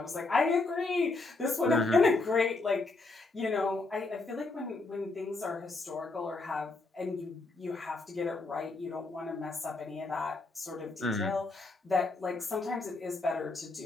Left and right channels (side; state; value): right; quieter; 3.4 dB